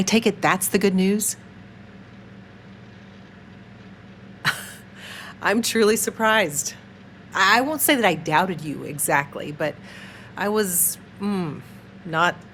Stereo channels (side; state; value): both; identical; correlation 1.00